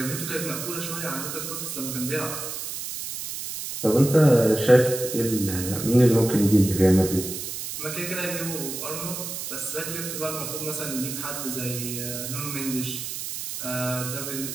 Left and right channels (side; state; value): right; noise; hiss, 6 dB below the sound